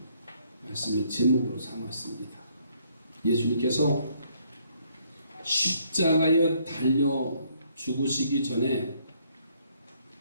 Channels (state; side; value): inverted; both; correlation -0.68